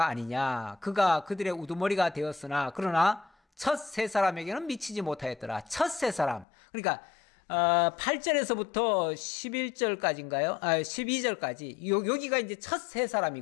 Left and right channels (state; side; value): drops out; right; at 6.5 s